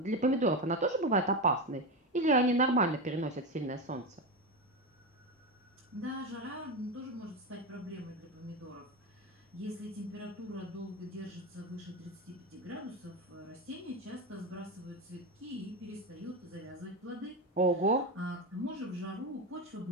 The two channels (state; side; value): normal; both; correlation 0.16